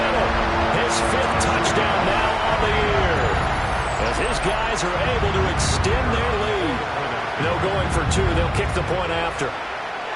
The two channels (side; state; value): both; identical; correlation 1.00